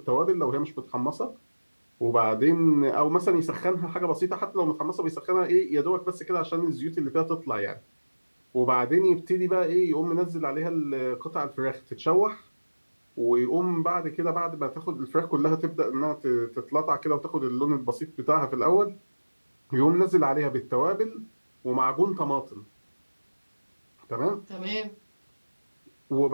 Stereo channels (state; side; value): inverted; both; correlation -1.00